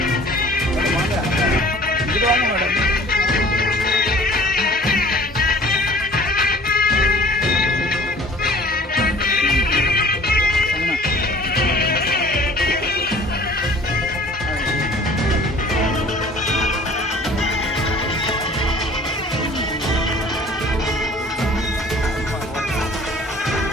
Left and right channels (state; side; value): normal; both; correlation 0.49